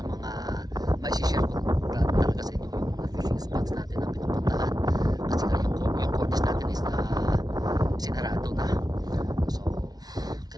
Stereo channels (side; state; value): left; late; 0.19 ms